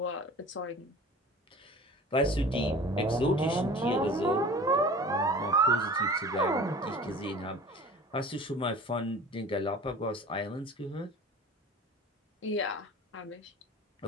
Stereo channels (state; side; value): normal; both; correlation 0.41